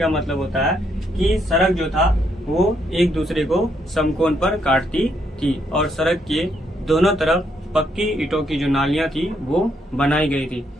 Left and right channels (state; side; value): normal; both; correlation 0.75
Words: मतलब होता है कि सड़क जो था वो एक दूसरे को समकोण पर काटती थी, और सड़क के दोनों तरफ पक्की ईंटों की जो नालियां थी वो बनाई गई थी,